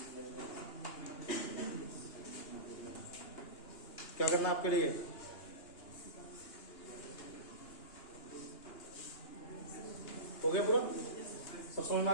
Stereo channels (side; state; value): right; late; 2.9 ms